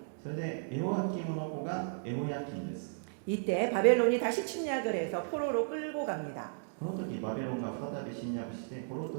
それでエホヤキムの子がエホヤキンです。 이때 바벨론이 다시 침략을 해서 포로로 끌고 갑니다. この時バビロンが再び侵略して捕虜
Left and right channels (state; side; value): silent; left; digital silence